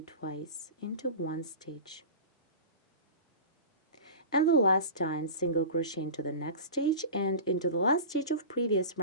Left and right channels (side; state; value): both; inverted; correlation -0.32